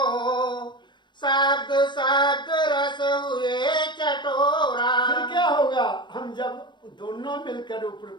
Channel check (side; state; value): right; late; 0.22 ms